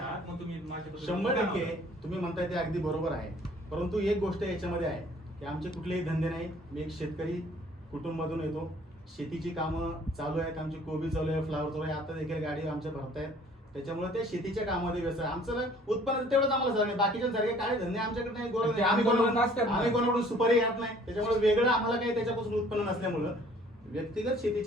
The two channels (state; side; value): normal; both; correlation 0.55